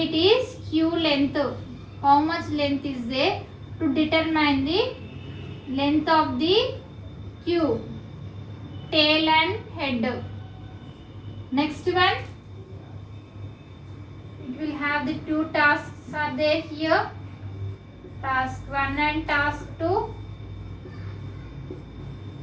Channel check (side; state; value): both; identical; correlation 1.00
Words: it is queue length. How much length is there to determine the length of the queue, tail and head. Next one, it will have the two tasks are there here, task 1 and task 2.